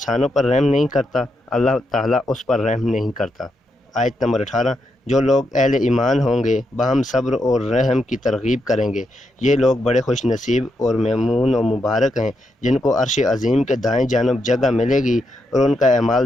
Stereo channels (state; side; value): normal; both; correlation 0.82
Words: پر رحم نہیں کرتا اللہ تعالیٰ اس پر رحم نہیں کرتا۔ آیت نمبر 18۔ جو لوگ اہل ایمان ہوں گے باہم صبر اور رحم کی ترغیب کریں گے، یہ لوگ بڑے خوش نصیب اور ممنون و مبارک ہیں جن کو عرش عظیم کے دائیں جانب جگہ ملے گی اور ان کا